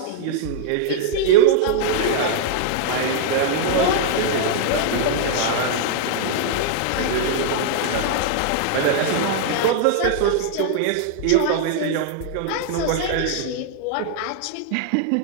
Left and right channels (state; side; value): different; both; correlation -0.01